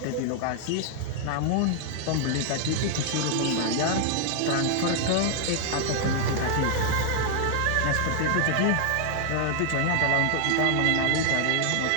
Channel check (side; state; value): both; different; correlation 0.00